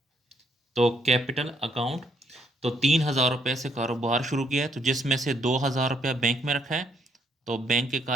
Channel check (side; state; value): both; normal; correlation 0.71